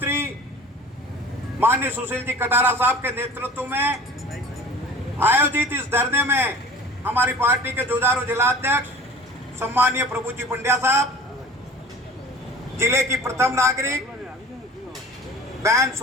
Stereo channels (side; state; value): both; normal; correlation 0.42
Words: माननीय सुशील जी कटारा साहब के नेतृत्व में आयोजित इस धरने में हमारी पार्टी के जुझारू जिलाध्यक्ष सम्मानीय प्रभु जी पंड्या साहब, जिले की प्रथम नागरिक बहन